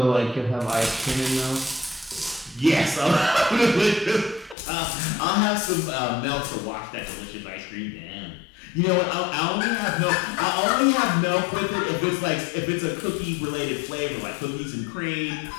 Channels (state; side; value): drops out; right; at 4.5 s